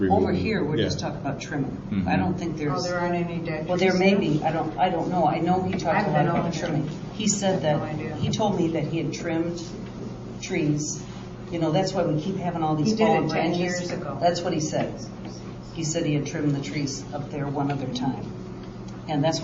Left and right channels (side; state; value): both; identical; correlation 1.00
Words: Over here, we're Yeah. just talking about trimming. Mhm. I don't think Oh, there's. there aren't any dead trees? Well, there may be, I don't know. I know he talked I've a lot been about over trimming. there. He said that, No idea. he told me that he had trimmed trees. You know, that's why we keep having all these He did it fallen 10 branches. years ago. That's what he said. He said he had trimmed the trees up there one other time. And that's